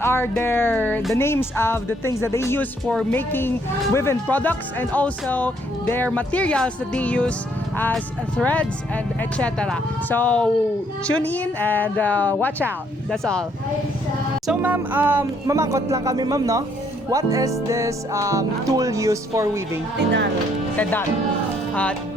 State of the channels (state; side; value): normal; both; correlation 0.68